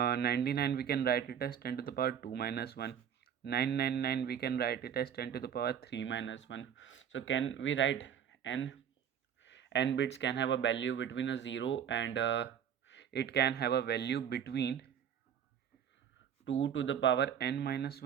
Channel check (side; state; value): left; quieter; 8.6 dB